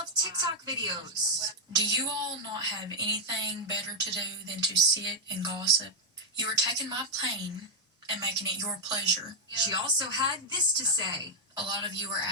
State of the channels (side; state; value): both; normal; correlation 0.00